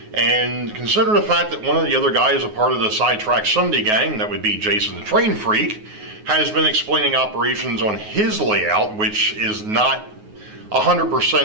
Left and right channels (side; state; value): left; late; 9.5 ms